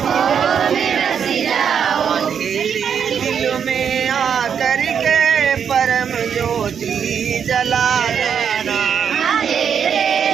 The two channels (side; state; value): left; quieter; 7.5 dB